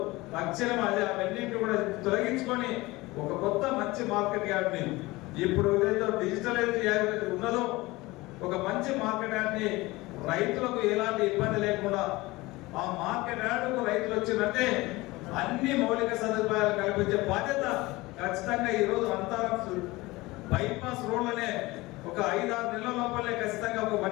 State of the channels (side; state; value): right; quieter; 20.9 dB